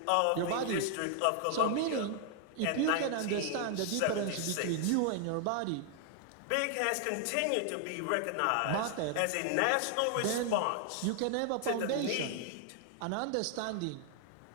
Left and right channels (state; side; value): different; both; correlation 0.00